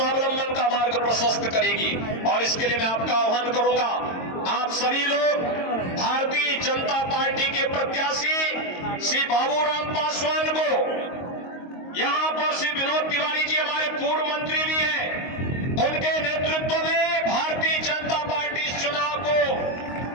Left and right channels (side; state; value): right; late; 22 ms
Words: का मार्ग प्रशस्त करेगी। और इसके लिए मैं आपका आह्वान करूंगा, आप सभी लोग भारतीय जनता पार्टी के प्रत्याशी श्री बाबूराम पासवान को, यहां पर श्री विनोद तिवारी जी हमारे पूर्व मंत्री भी हैं, उनके नेतृत्व में भारतीय जनता पार्टी इस चुनाव को